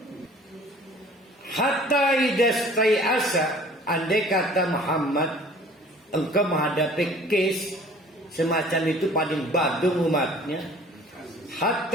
Hatta idastai asa, andai kata Muhammad engkau menghadapi case semacam itu paling badung umatnya.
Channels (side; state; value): both; normal; correlation 0.50